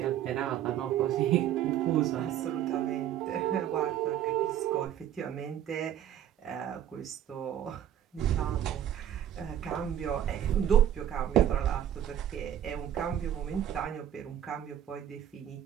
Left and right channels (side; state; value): left; quieter; 10.6 dB